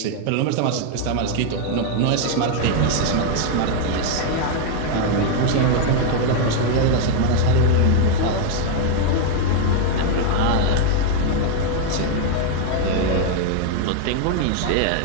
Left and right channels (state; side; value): different; both; correlation 0.00